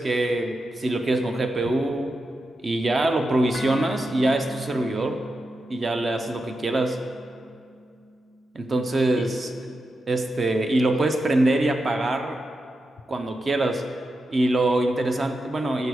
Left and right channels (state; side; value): normal; both; correlation 0.88